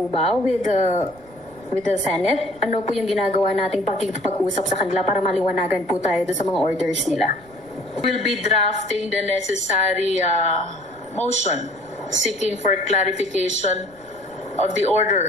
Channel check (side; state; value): right; noise; rumble, 27 dB below the sound